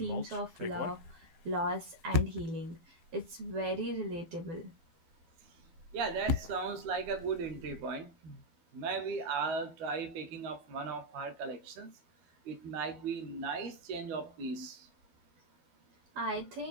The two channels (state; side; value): late; left; 12 ms